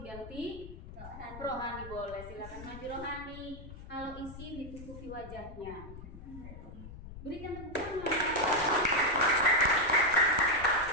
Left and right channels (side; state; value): left; noise; rumble, 14 dB below the sound